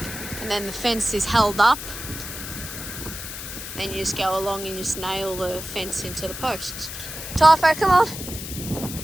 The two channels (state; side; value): noise; left; hiss, 9 dB below the sound